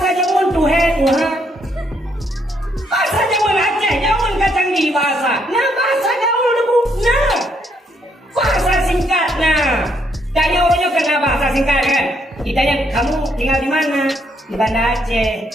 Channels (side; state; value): both; normal; correlation 0.73